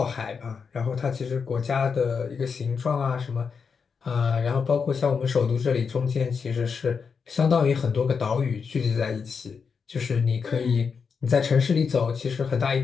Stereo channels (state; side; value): quieter; right; 5.8 dB